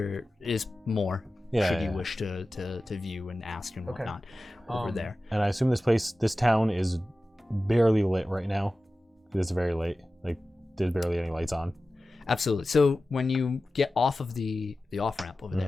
is more should you wish to view and ask and whatnot over there. And I assume this town is barely lit right now. It's very late. Like there's barely any lights on. Absolutely. So when you get off of the off ramp over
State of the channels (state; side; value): normal; both; correlation 0.95